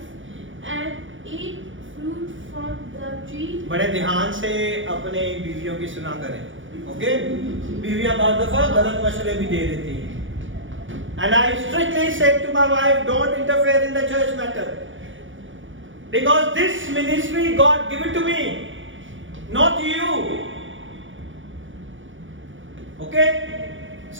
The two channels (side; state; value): left; late; 0.56 ms